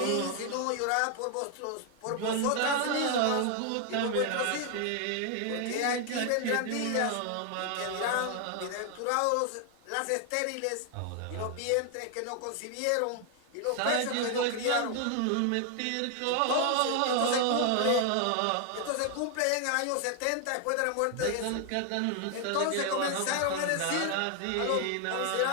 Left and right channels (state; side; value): different; both; correlation 0.00